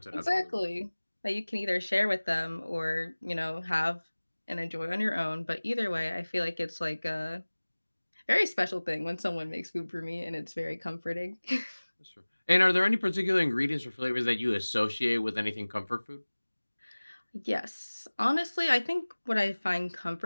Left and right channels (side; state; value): both; inverted; correlation -1.00